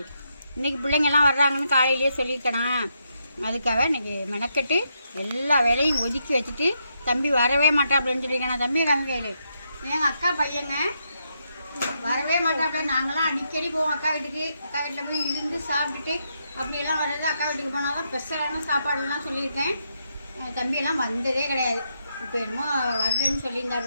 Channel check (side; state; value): both; inverted; correlation -0.80